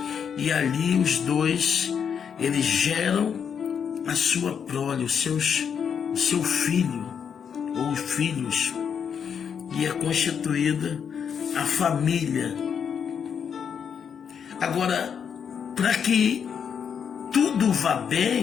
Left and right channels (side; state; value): right; quieter; 7.3 dB